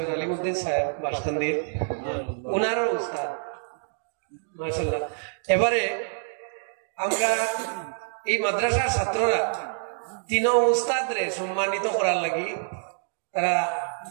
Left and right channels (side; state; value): left; silent; digital silence